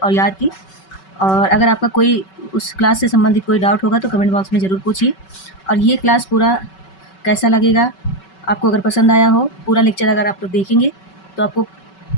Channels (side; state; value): right; late; 5.3 ms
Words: याद की। और अगर आपका कोई उस क्लास से संबंधित कोई डाउट होगा तो कमेंट बॉक्स में ज़रूर पूछिए। और ये क्लास पूरा कैसा लगेगा, आपको अगर पसंद आया हो, पूरा लेक्चर अगर आप लोग देखेंगे तो आपको